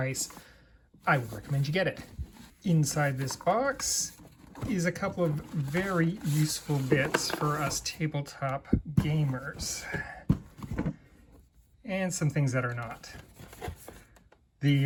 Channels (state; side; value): identical; both; correlation 1.00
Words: I would recommend you get it. Inside this box is a couple of very useful bits for us tabletop gamers. And some things that are not.